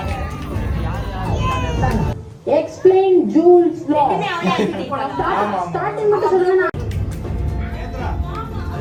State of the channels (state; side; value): identical; both; correlation 1.00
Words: Explain Jules law. Starting மட்டும் சொல்லுங்க.